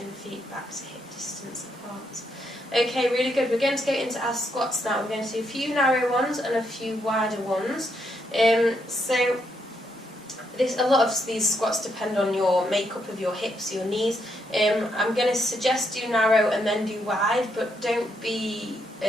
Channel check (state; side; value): normal; both; correlation 0.77